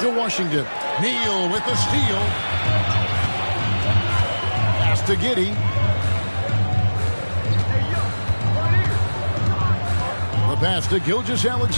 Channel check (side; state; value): both; inverted; correlation -1.00